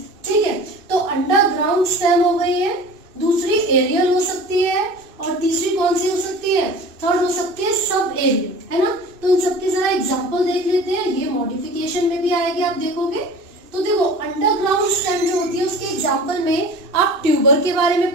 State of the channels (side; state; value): left; late; 2.6 ms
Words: ठीक है। तो अंडरग्राउंड स्टेम हो गई है, दूसरी एरियल हो सकती है, और तीसरी कौन सी हो सकती है, थर्ड हो सकती है सब एरियल, है ना। तो इन सबके जरा एग्जांपल देख लेते हैं। ये मॉडिफिकेशन में भी आएगी, आप देखोगे। तो देखो अंडरग्राउंड स्टेम जो होती है उसके एग्जांपल में आप ट्यूबर के बारे में